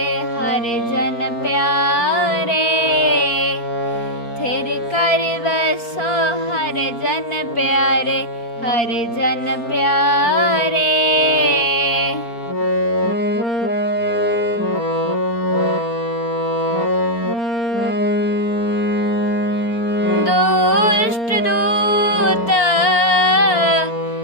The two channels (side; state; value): right; late; 4.3 ms